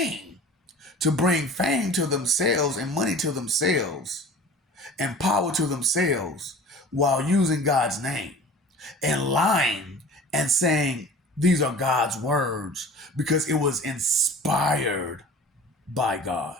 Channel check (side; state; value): both; normal; correlation 0.41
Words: to bring fame to themselves and money to themselves and power to themselves while using God's name and lying and saying these are God's words because it was inspired by God?